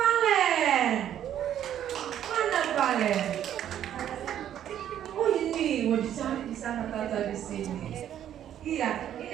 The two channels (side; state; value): left; quieter; 10.6 dB